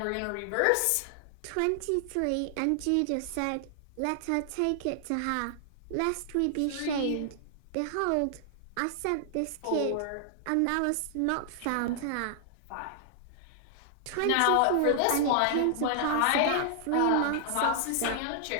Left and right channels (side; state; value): both; different; correlation 0.00